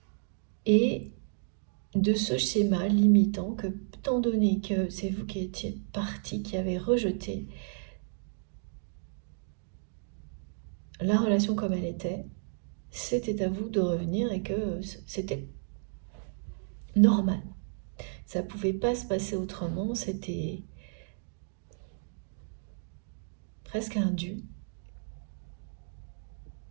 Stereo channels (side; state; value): left; silent; digital silence